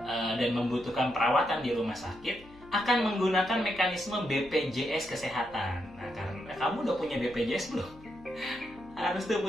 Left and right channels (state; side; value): noise; left; hum, 22 dB below the sound